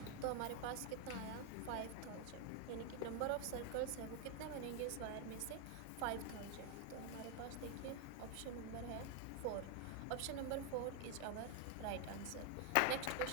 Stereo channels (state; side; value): different; both; correlation 0.01